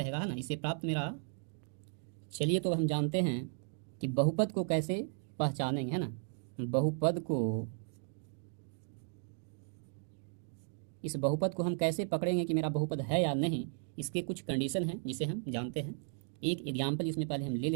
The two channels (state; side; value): silent; left; 54 dB below the other